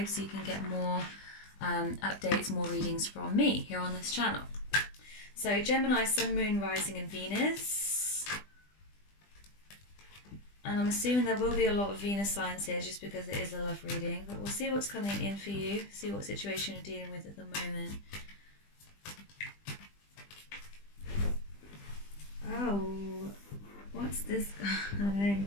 so you can get more updates, more readings from me here on this channel. So Gemini, Sun, Moon, Rising and Venus. And I'm assuming there will be a lot of Venus signs here just because it is a love reading. But we'll see what's coming in for you, see what situation you're dealing with at the moment. Oh, what's this guy?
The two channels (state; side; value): late; right; 20 ms